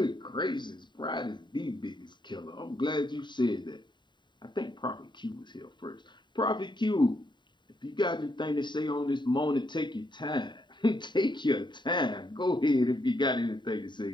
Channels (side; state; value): right; late; 0.22 ms